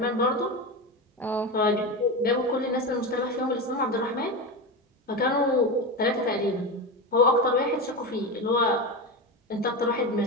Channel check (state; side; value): normal; both; correlation 0.19